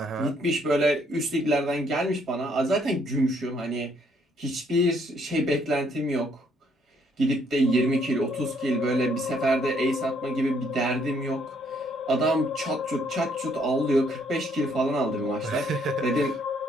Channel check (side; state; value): both; normal; correlation 0.68